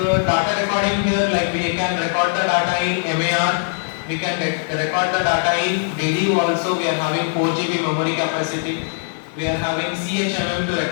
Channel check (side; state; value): right; silent; digital silence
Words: recording here, like we can record the data in MAR, we can record the data in DD also. We are having 4 GB memory capacity, we are having CHMM to